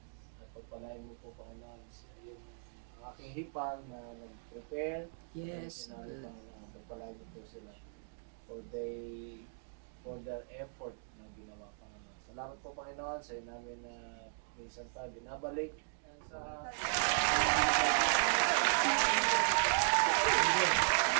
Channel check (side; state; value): left; silent; digital silence